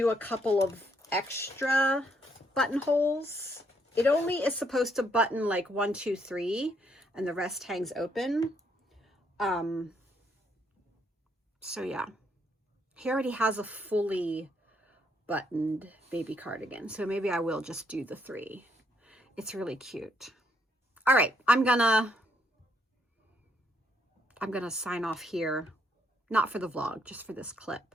a couple of extra buttonholes. It only is supposed to button like 1, 2, 3, and the rest hangs open. So yeah, he already has a fully buttoned baby cardigan. So maybe I will just do the 3. It's really cute. All right, I'm gonna sign off here not for the vlog, just for this clip.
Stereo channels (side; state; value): both; normal; correlation 0.73